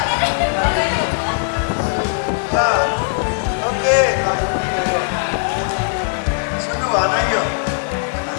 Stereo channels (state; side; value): silent; right; digital silence